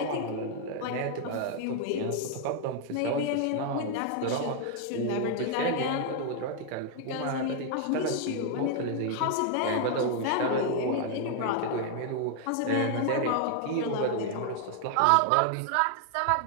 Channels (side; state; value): both; different; correlation 0.00